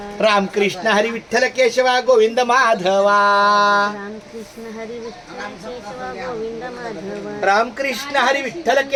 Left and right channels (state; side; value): identical; both; correlation 1.00